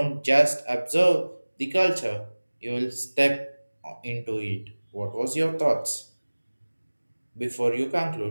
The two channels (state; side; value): inverted; both; correlation -1.00